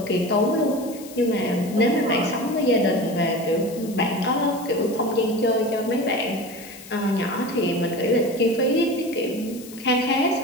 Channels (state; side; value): noise; left; hiss, 18 dB below the sound